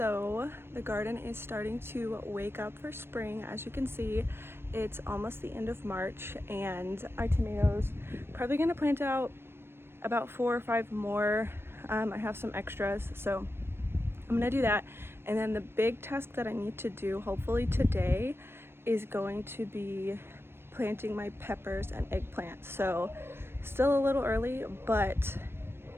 the garden is starting to wake up for spring. As you can see, it's almost the end of March and our tomatoes probably gonna plant out about 4 or 5 more. I have some extras, so I'm gonna do that. And then the big task that I need to do, hopefully today, is going to be planting my peppers and eggplants. So still a little early, but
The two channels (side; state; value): left; late; 0.12 ms